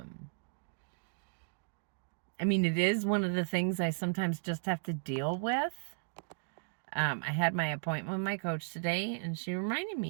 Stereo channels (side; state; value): left; silent; digital silence